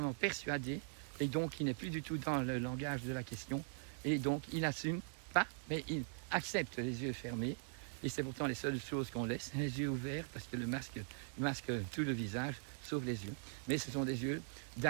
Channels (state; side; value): silent; left; digital silence